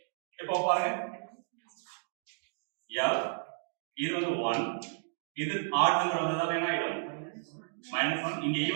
இப்போ பாருங்க F இது வந்து 1 இது ஆட் நம்பர் வந்ததால என்ன ஆயிடும் -1 இங்க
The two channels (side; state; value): left; silent; digital silence